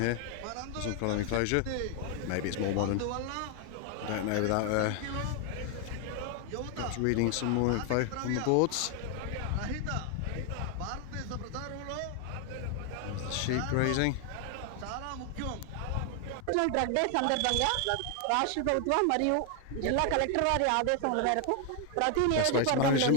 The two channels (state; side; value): different; both; correlation 0.00